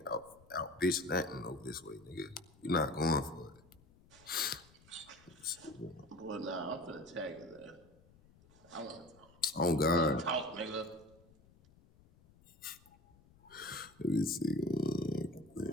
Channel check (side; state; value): left; noise; rumble, 26 dB below the sound